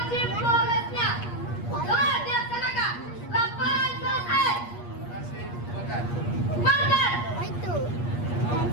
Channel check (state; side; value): late; right; 8.4 ms